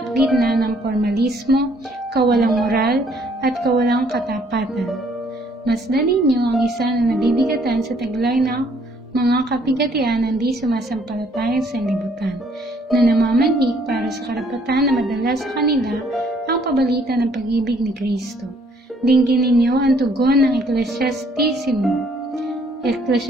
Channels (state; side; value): normal; both; correlation 0.64